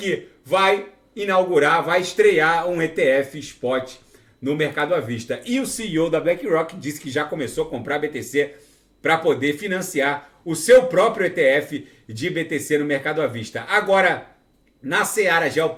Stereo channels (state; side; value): identical; both; correlation 1.00